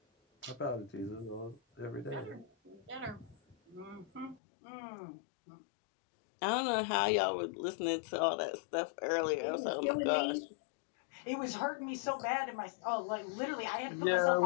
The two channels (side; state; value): right; drops out; at 4.4 s